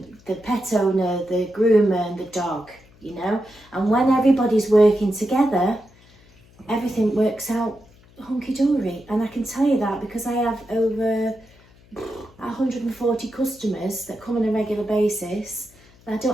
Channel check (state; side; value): noise; left; hum, 27 dB below the sound